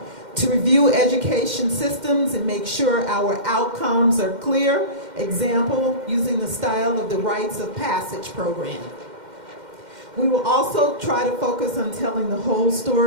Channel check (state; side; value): late; left; 2.1 ms